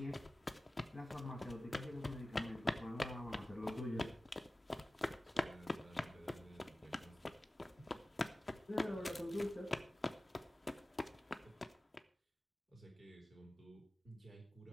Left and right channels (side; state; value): both; normal; correlation 0.96